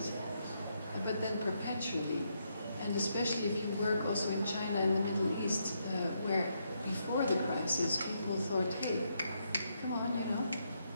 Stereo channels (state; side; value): inverted; both; correlation -0.78